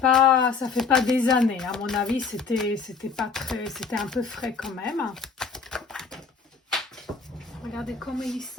fait pas des années. À mon avis, c'était un peu frais quand même. Regardez comment il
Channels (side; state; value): right; quieter; 5.1 dB